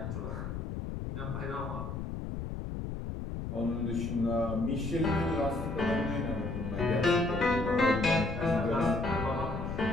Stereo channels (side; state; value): left; noise; rumble, 5 dB below the sound